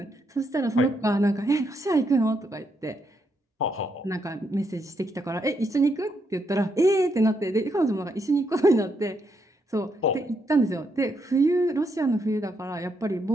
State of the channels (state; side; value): normal; both; correlation 0.78